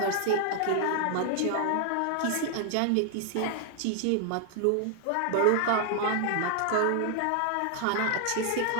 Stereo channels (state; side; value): different; both; correlation 0.00